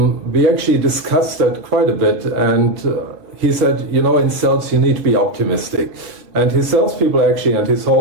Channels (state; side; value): late; left; 4.1 ms